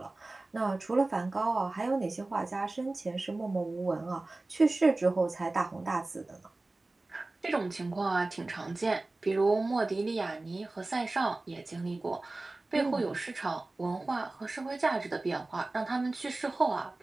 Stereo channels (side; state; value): left; quieter; 3.1 dB